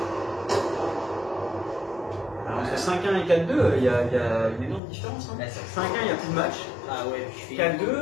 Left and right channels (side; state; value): right; drops out; at 4.8 s